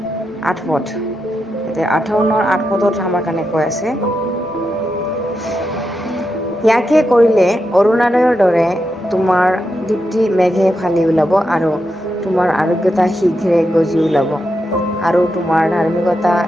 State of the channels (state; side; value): normal; both; correlation 0.86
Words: 8 পদ। এতিয়া 58 8 পদত আমাৰ কাৰণে কৈ আছে, ইয়াকে কৰিলে অৰুণোদয়ৰ দৰে তোমাৰ দীপ্তি মেঘে ফালি ওলাব আৰু তোমাৰ আৰোগ্যতা শীঘ্ৰে গজি ওলাব আৰু তোমাৰ ধাৰ্মিকতা